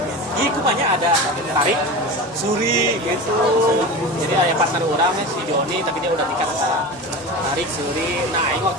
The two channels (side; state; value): both; normal; correlation 0.29